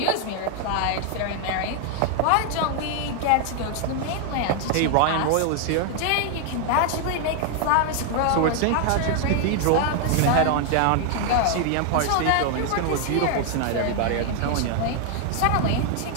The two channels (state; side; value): different; both; correlation 0.00